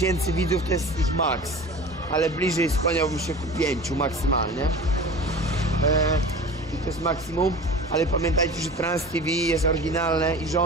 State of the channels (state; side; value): normal; both; correlation 0.37